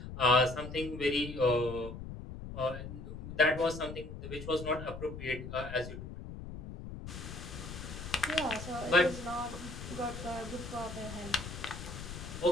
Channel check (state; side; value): noise; left; rumble, 10 dB below the sound